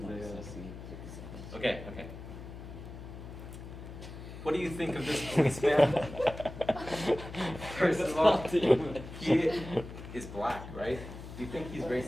Okay. What do you think of this policeman? First of all, he is black, right? Do you think he's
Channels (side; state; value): left; noise; hum, 12 dB below the sound